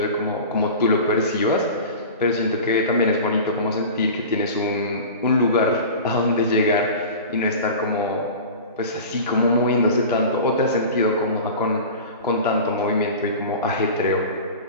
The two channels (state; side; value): inverted; both; correlation -0.34